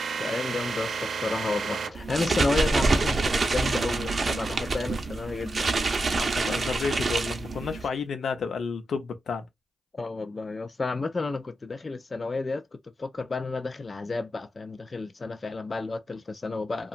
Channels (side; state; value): both; normal; correlation 0.87